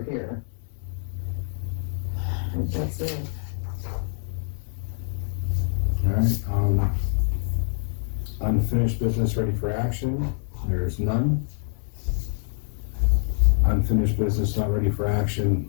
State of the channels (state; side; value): silent; right; 58 dB below the other